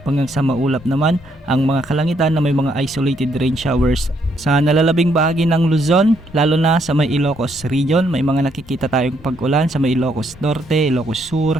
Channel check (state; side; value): normal; both; correlation 0.72